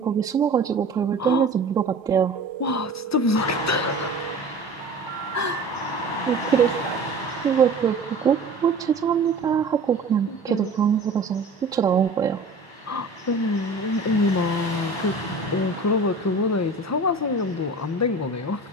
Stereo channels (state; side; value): quieter; left; 3.0 dB